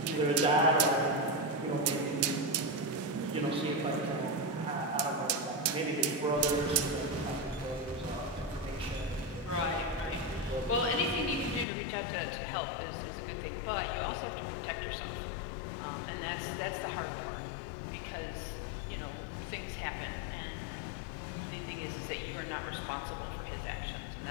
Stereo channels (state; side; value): drops out; right; at 11.7 s